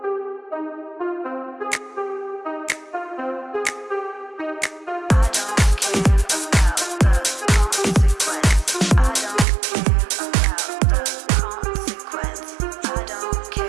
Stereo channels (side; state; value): left; drops out; at 9.5 s